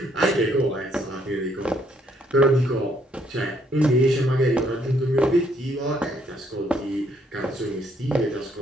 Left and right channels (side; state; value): both; normal; correlation 0.69